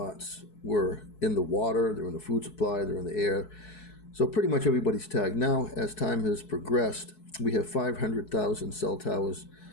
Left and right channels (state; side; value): late; right; 4.7 ms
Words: were in the water, they're in the food supply, they're in the air. So pretty much everybody's tagged. Now, as time has progressed, we have 500,000 cell towers